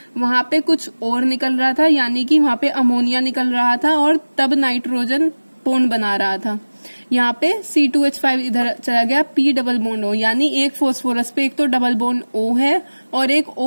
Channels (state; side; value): inverted; both; correlation -1.00